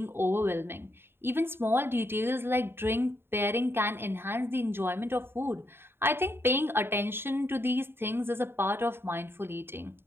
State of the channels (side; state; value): left; late; 0.11 ms